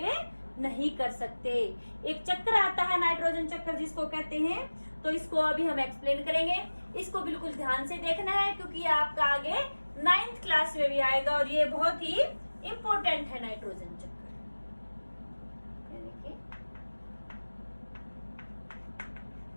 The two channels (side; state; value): both; inverted; correlation -1.00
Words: नहीं कर सकते। एक चक्र आता है नाइट्रोजन चक्र जिसको कहते हैं, तो इसको अभी हम एक्सप्लेन करेंगे। इसको बिल्कुल ध्यान से देखना है क्योंकि आपका आगे 9th क्लास में भी आएगा और ये बहुत ही इंपॉर्टेंट है नाइट्रोजन चक्र।